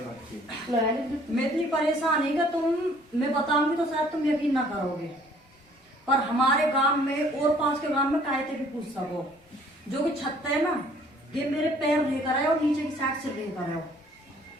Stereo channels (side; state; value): both; normal; correlation 0.58